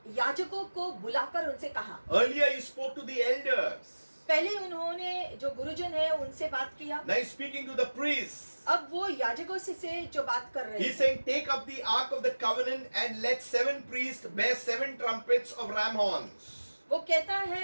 याजकों को बुलाकर उनसे कहा। Earlier he spoke to the elders. पहले उन्होंने जो गुरुजन है उनसे बात किया। Now he's speaking to the priests. अब वो याजकों से जो बात कर रहे He's हैं। saying, take up the ark of the covenant and let 7 priests bear 7 trumpets of ram horns. वो कहता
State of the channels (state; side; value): inverted; both; correlation -1.00